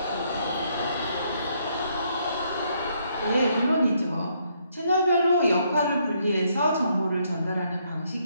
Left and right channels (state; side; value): inverted; both; correlation -0.72